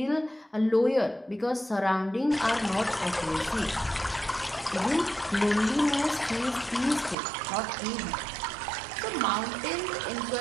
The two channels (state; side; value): drops out; left; at 7.2 s